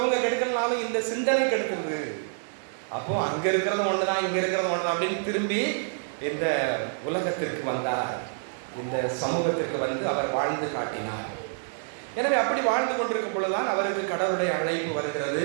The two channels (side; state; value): left; silent; digital silence